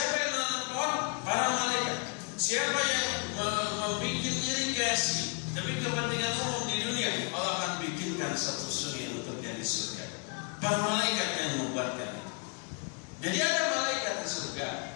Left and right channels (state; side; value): quieter; right; 37.4 dB